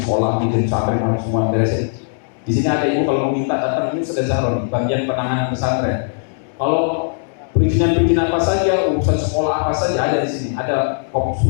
di pesantren harus semua beresin. Di sini ada ibu kalau mau minta datang, ini sudah Zahron, bagian penanganan pesantren. Kalau perizinan apa saja, urusan sekolah apa saja ada di sini. Ada kop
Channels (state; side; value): silent; right; 67 dB below the other